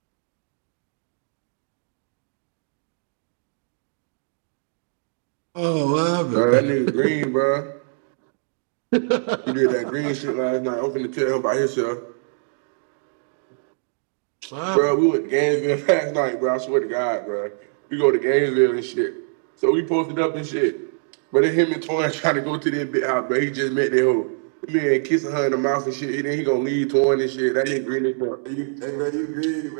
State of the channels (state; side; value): silent; left; digital silence